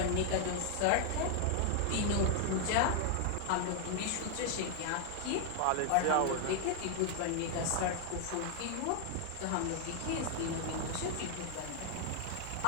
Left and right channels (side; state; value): both; different; correlation 0.00